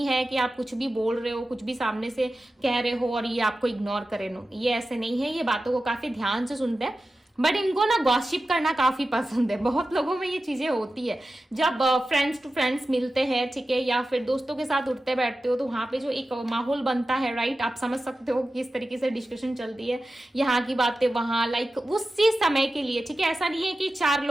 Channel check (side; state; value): both; normal; correlation 0.93